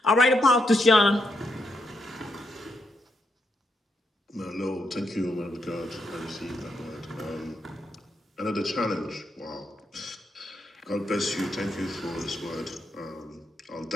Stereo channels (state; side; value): normal; both; correlation 0.80